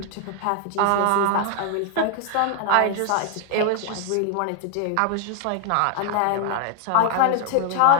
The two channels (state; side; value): different; both; correlation 0.00